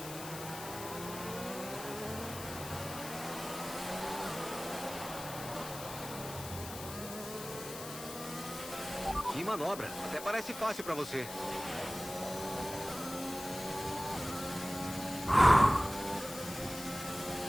Que manobra. Até parece fácil pra você.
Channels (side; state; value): left; noise; hiss, 10 dB below the sound